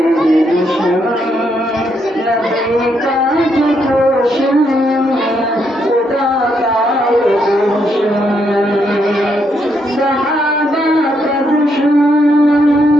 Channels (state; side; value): normal; both; correlation 0.77